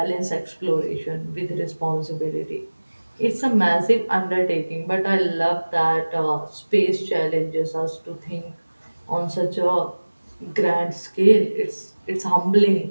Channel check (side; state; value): both; inverted; correlation -1.00